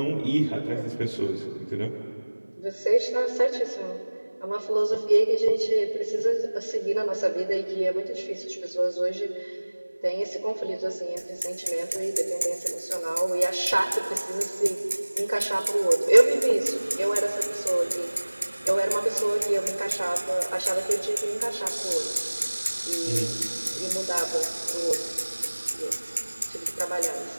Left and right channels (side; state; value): both; inverted; correlation -1.00